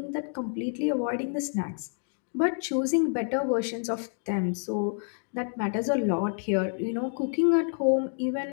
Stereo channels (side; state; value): right; silent; 59 dB below the other